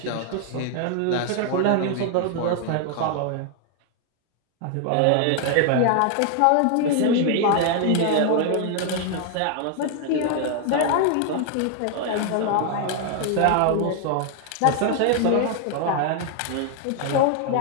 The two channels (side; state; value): both; different; correlation 0.00